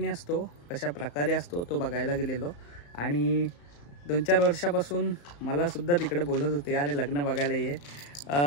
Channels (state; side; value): late; right; 35 ms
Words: असतो, कशा प्रकारे असतो तो बघायला गेलेलो. आणि 2-4 वर्षापासून मला सुद्धा तिकडे बोलत होते, अरे लग्न बघायला ये,